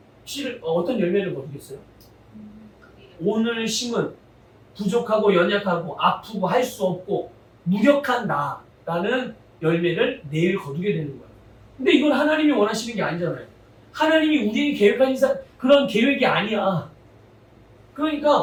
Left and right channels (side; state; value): both; identical; correlation 1.00